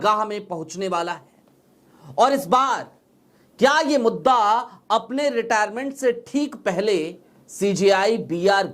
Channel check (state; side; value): identical; both; correlation 1.00